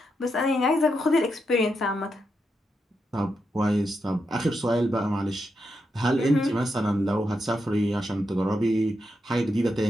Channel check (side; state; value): both; normal; correlation 0.84